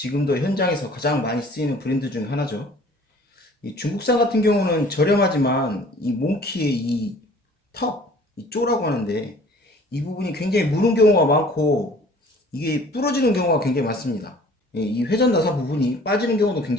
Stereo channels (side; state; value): both; normal; correlation 0.51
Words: 현장에서 가장 많이 쓰이는 브랜드 중 하나죠. 이 중국산 같은 경우는 저렴하지만 이 몽키의 이 턱, 이 쪼라고 하는데 이 부분이 굉장히 무는 경우가 많고 이게 부러지는 경우가 굉장히 많습니다. 이 회전 나사 부분이 빠지는 경우도